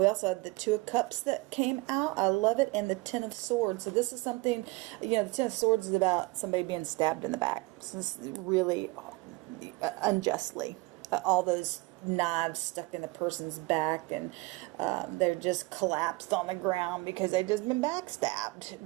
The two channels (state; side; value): quieter; left; 24.2 dB